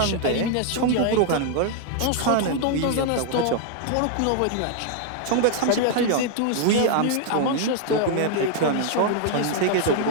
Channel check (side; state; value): both; different; correlation 0.00